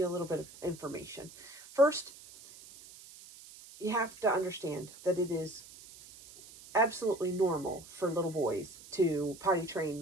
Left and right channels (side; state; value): right; noise; hiss, 19 dB below the sound